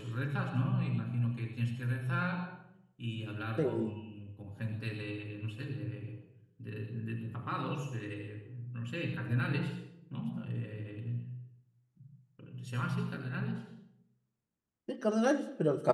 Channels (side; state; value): both; identical; correlation 1.00